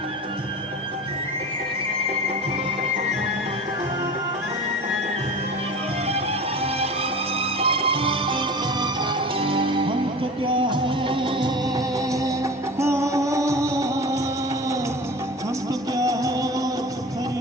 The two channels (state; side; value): normal; both; correlation 0.35